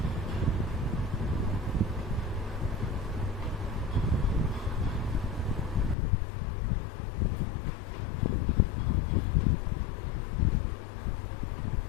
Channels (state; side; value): drops out; right; at 6.0 s